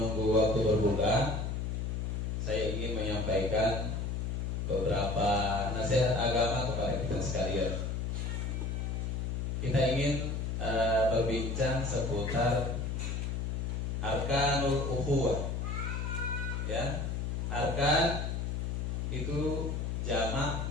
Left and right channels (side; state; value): left; noise; hum, 1 dB below the sound